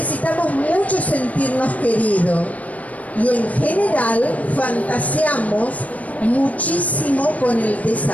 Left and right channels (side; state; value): right; late; 0.070 ms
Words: mucho sentirnos queridos y en general fantaseamos muchísimo con el